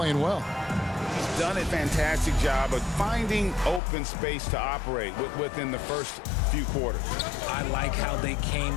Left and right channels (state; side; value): drops out; right; at 3.8 s